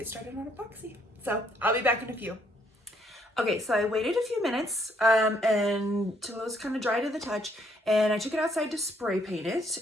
started on epoxy. So I'll be back in a few. Okay, so I waited a few minutes until it was kind of dry to the touch, and I took it outside to spray paint it.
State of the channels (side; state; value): both; normal; correlation 0.69